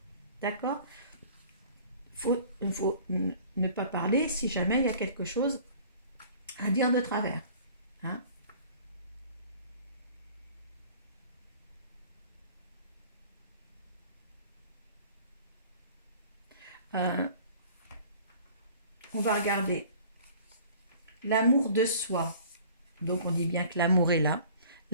D'accord ? Il faut ne pas parler si jamais il y a quelque chose à dire de travers. Hein. On va regarder l'amour de soi. Donc on dit bien que l'amour est là.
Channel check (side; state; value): both; inverted; correlation -0.48